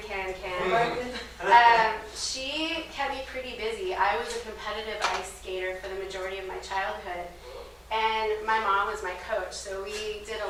she kept me pretty busy. I was a competitive ice skater for the majority of my childhood, and my mom was my coach, so we did a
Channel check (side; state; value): both; identical; correlation 1.00